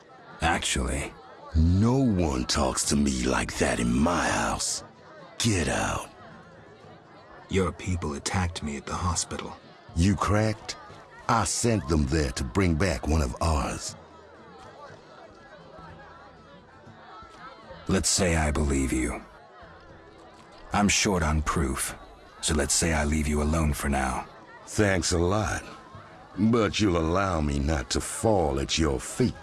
Actually. No one talks to me like that in my house. Get out. Your people attacked me at the hospital. You cracked? I sent them there to bring back one of ours. Let's say I believe you. I'm short on proof, so let's say I leave you alone for now. Thanks a lot. But you'll allow me not to fall at your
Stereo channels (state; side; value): identical; both; correlation 1.00